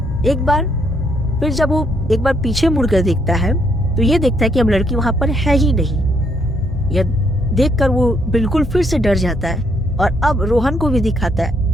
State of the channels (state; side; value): normal; both; correlation 0.72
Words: एक बार फिर जब वो एक बार पीछे मुड़कर देखता है तो ये देखता है कि अब लड़की वहां पर है ही नहीं। यह देखकर वो बिल्कुल फिर से डर जाता है और अब रोहन को भी दिखाता